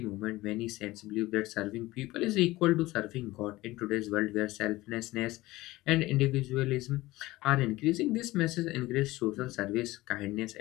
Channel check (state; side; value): quieter; right; 18.7 dB